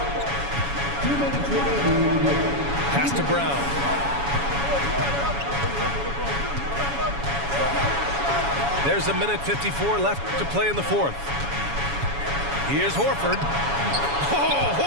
Pass to Brown. There's 1:54 left to play in the fourth. Here's Horford. Oh,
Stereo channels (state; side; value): late; left; 7.1 ms